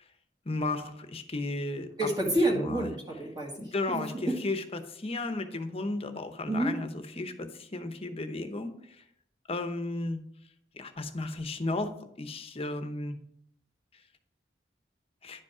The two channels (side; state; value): both; normal; correlation 0.63